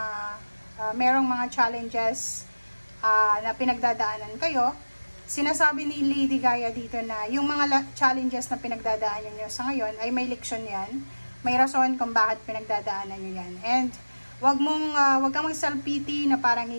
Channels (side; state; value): both; inverted; correlation -1.00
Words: merong mga challenges na pinagdadaanan kayo, sinasabi ni Lady Gaia dito na yung mga challenges na pinagdadaanan nyo sa ngayon ay may leksyon yan, may rason kung bakit pinagdadaanan nyo yan. And wag kang mag-self-pity na parang